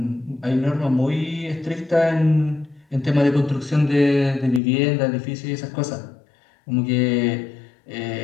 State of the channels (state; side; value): drops out; right; at 4.6 s